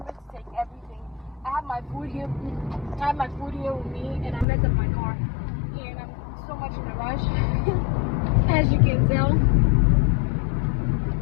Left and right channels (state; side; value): drops out; right; at 4.5 s